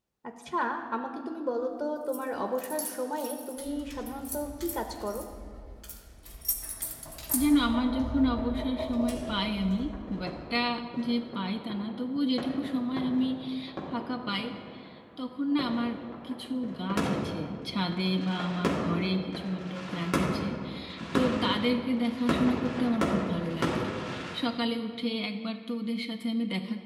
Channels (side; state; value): both; identical; correlation 1.00